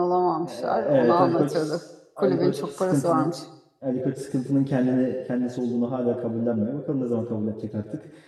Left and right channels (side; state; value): both; identical; correlation 1.00